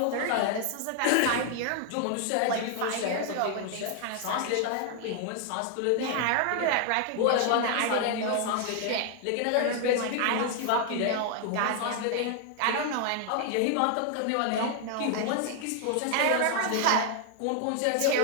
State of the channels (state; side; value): different; both; correlation 0.00